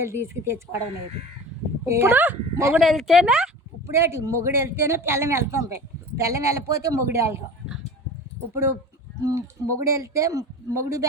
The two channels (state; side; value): normal; both; correlation 0.36